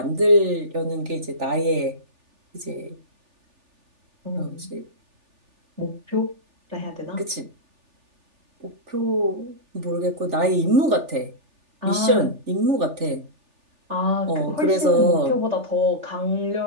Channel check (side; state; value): left; late; 3.4 ms